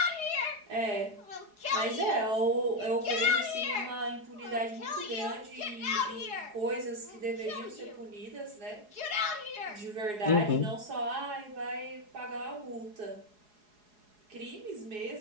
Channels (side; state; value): left; late; 4.8 ms